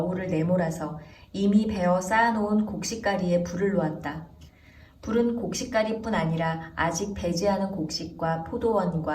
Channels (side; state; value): both; identical; correlation 1.00